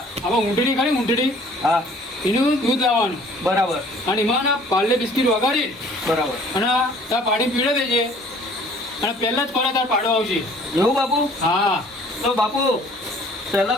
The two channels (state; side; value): normal; both; correlation 0.54